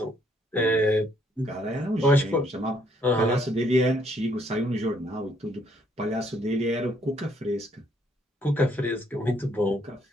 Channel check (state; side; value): normal; both; correlation 0.68